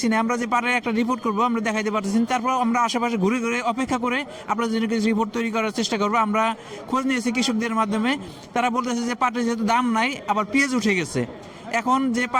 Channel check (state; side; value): identical; both; correlation 1.00